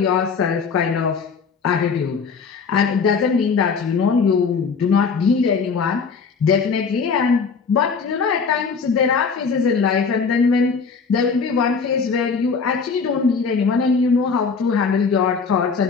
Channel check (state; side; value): quieter; right; 5.4 dB